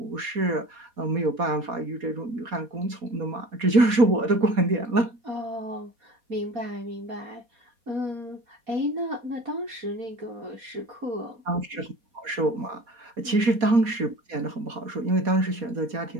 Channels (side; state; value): left; late; 4.2 ms